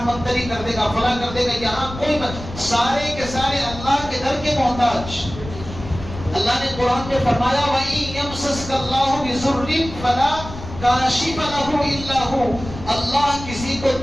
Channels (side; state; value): left; noise; rumble, 12 dB below the sound